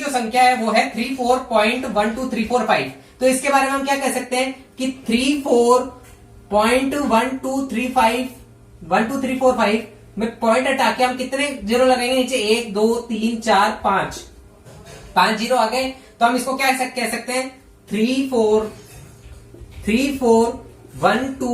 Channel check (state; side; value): identical; both; correlation 1.00